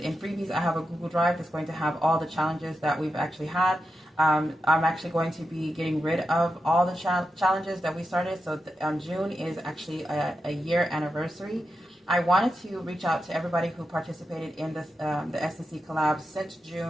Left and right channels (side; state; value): both; normal; correlation 0.89